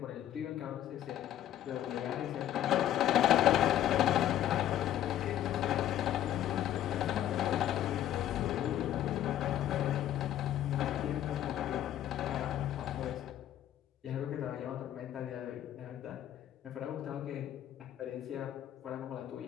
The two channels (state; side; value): quieter; right; 11.8 dB